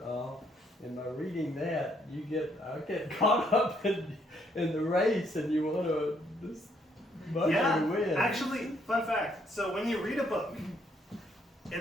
all. And by reading that, I get caught up in the race, and you want to this musher to win. Actually, fun fact. So when you read a book,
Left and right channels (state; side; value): normal; both; correlation 0.70